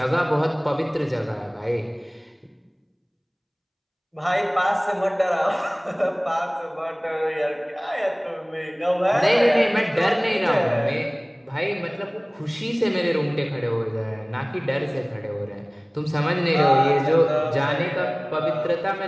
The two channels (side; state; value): both; identical; correlation 1.00